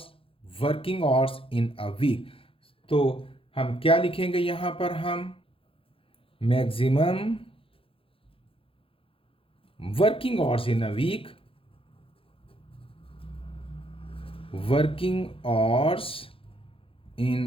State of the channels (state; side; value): late; right; 0.27 ms